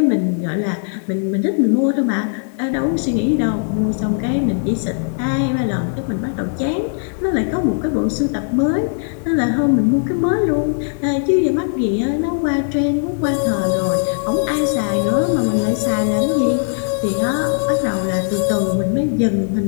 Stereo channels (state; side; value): silent; right; digital silence